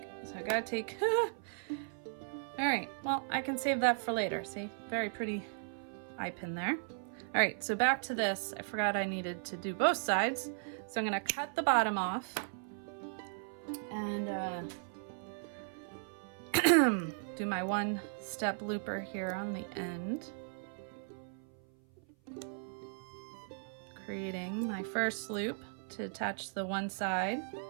So I gotta take, all right, well, I can save that for later. See, very pretty eye pin there. All right, so back to this. I forgot I needed to do both sides. So I'm gonna cut the bottom off and do my one step looper here on the end, creating my first loop to attach the one side,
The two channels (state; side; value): silent; left; 53 dB below the other